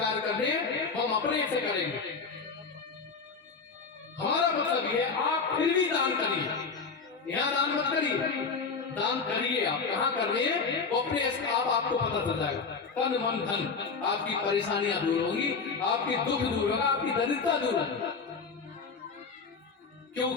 करने हैं हम अपने से करेंगे। हमारा मतलब ये है आप फिर भी दान करिए, यहाँ दान मत करिए, दान करिए। आप कहाँ कर रहे हैं वो अपने आप आपको पता चल जाएगा। तन मन धन आपकी परेशानियां दूर होगी, आपकी दुख दूर होगा, आपकी दरिद्रता दूर होगी।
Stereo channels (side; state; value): right; quieter; 4.9 dB